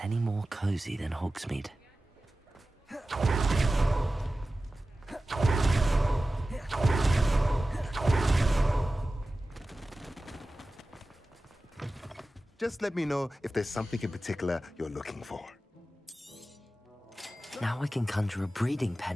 any more cozy than Hogsmeade? Just let me know if there's something in particular you're looking for. Now I can conjure a breeding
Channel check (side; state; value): both; normal; correlation 0.95